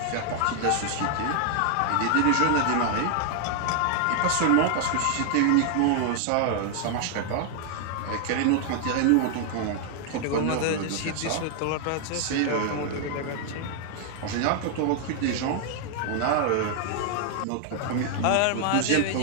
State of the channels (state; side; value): different; both; correlation 0.00